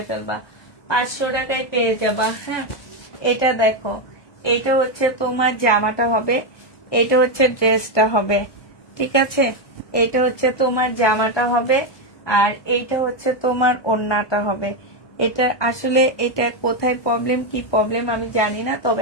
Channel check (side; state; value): right; late; 1.2 ms